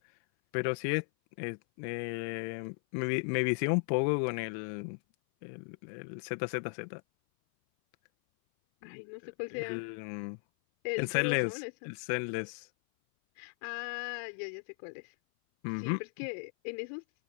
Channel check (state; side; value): silent; right; 54 dB below the other